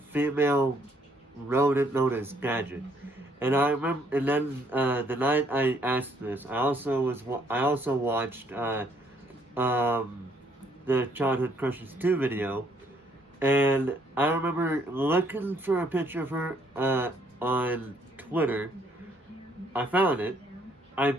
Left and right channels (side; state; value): both; normal; correlation 0.67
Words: female rodent known as Gadget. And I remember, and then the night I asked this, I also watched the Childhood Crushes 2 video, and I remember looking for a picture of her on Twitter. I found it. I